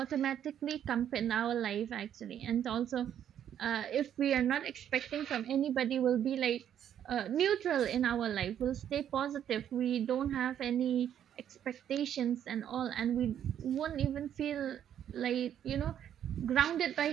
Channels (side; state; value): left; quieter; 9.9 dB